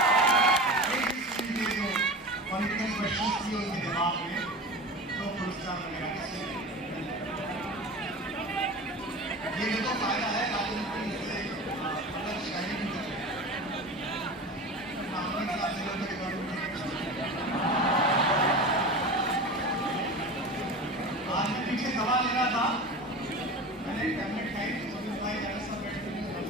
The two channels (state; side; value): normal; both; correlation 0.31